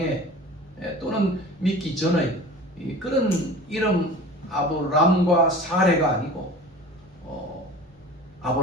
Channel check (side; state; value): both; normal; correlation 0.39